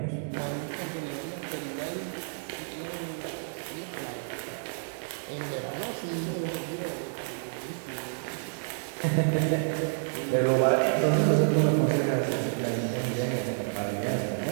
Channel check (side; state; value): left; silent; digital silence